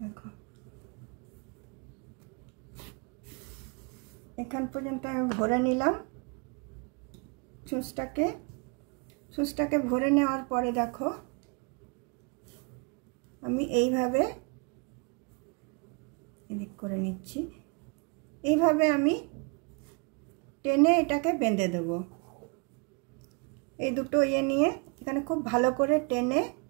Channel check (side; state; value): left; quieter; 34.0 dB